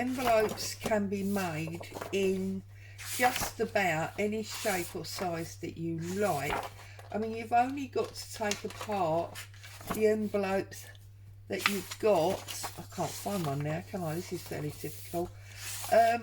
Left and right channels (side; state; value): both; identical; correlation 1.00